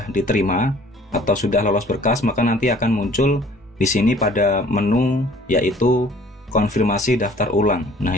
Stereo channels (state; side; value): normal; both; correlation 0.54